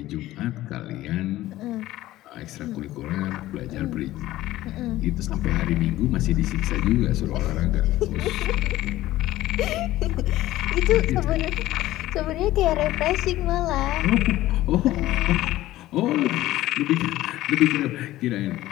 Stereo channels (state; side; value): quieter; right; 15.7 dB